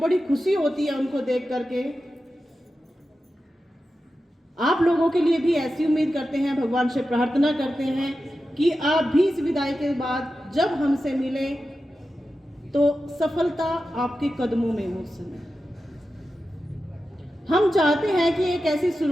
खुशी होती है उनको देख करके। आप लोगों के लिए भी ऐसी उम्मीद करते हैं, भगवान से प्रार्थना करते हैं कि आप भी इस विदाई के बाद जब हमसे मिले तो सफलता आपके कदमों में हो। समय हम चाहते हैं कि एक ऐसी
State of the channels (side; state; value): both; normal; correlation 0.92